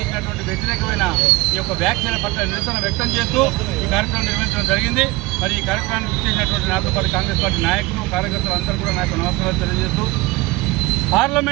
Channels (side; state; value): left; quieter; 21.7 dB